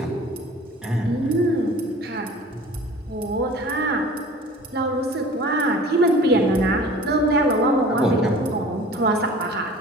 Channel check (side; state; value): both; normal; correlation 0.43